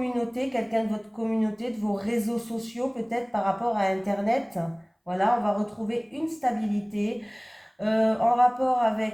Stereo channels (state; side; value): identical; both; correlation 1.00